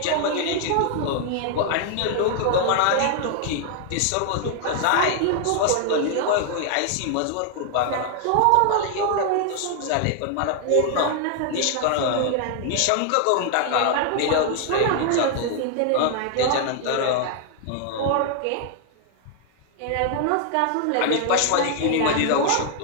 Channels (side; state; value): both; different; correlation 0.00